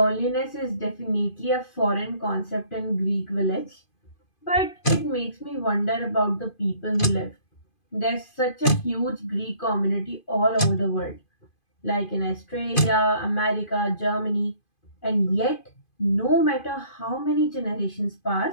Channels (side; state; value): right; late; 2.5 ms